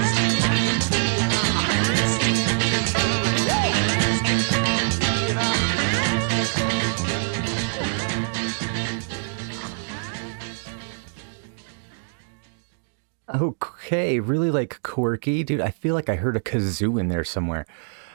Okay, really like quirky, dude. I feel like I heard a kazoo in there somewhere.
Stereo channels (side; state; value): left; silent; 60 dB below the other